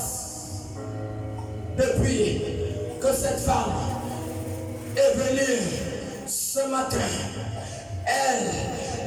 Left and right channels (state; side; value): identical; both; correlation 1.00